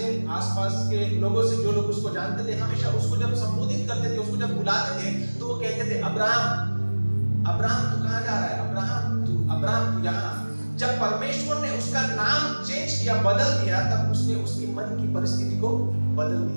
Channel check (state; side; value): inverted; both; correlation -1.00